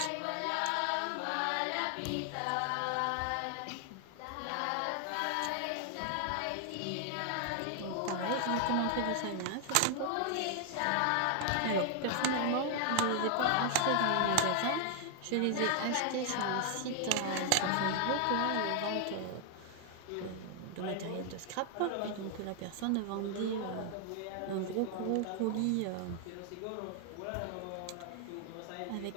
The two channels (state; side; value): different; both; correlation 0.00